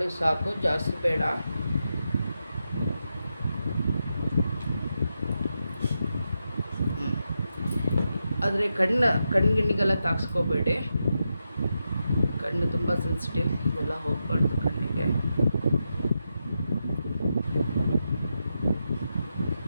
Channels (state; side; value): inverted; both; correlation -0.87